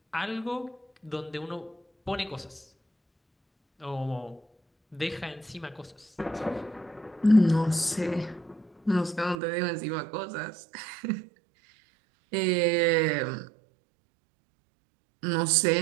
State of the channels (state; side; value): drops out; left; at 9.3 s